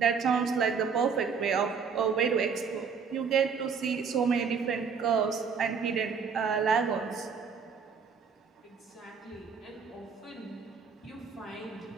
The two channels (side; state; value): left; quieter; 6.0 dB